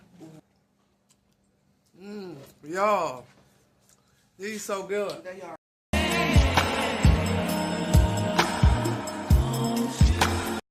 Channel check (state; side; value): identical; both; correlation 1.00